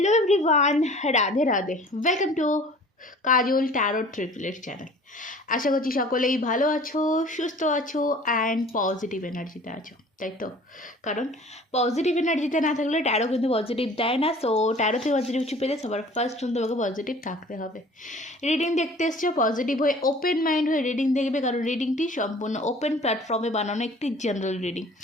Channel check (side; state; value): both; normal; correlation 0.48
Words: everyone, Radhe Radhe. Welcome to Kajal tarot triplet channel. আশা করছি সকলেই ভালো আছো, সুস্থ আছো অ্যান্ড পজিটিভ এনার্জিতে আছো, তাই তো? কারণ পজিটিভ এনার্জিতে না থাকলে ট্যারো কিন্তু পজিটিভ দেয় না। সো ট্যারোতে পজিটিভ কিছু পেলে সবার ফার্স্ট তোমাকে পজিটিভ থাকতে হবে। রিডিং দেখতে এসছো, পজিটিভ হয়ে ওপেন মাইন্ড হয়ে রিডিং দেখবে, কারণ রিডিংটি সম্পূর্ণ ওপেন প্ল্যাটফর্মে বানানো একটি জেনারেল রিডিং।